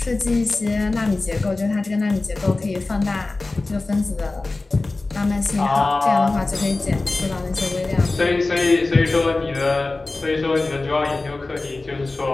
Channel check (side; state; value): right; quieter; 3.3 dB